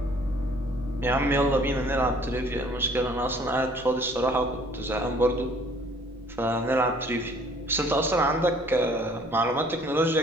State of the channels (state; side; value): noise; right; rumble, 23 dB below the sound